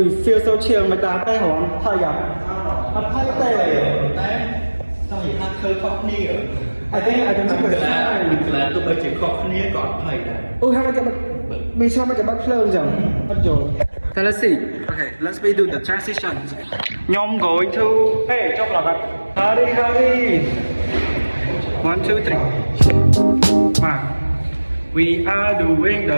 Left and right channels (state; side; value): inverted; both; correlation -1.00